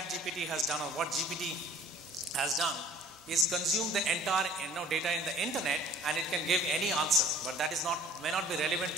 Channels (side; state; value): both; normal; correlation 0.50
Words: has done, or what GPT has done, is consume the entire data in the internet, and it can give any answer. But that is may not be relevant